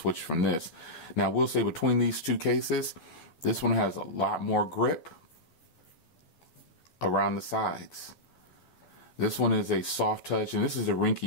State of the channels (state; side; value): late; right; 13 ms